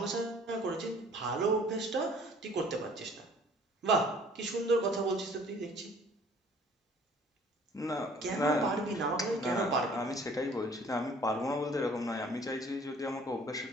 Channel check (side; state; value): both; normal; correlation 0.54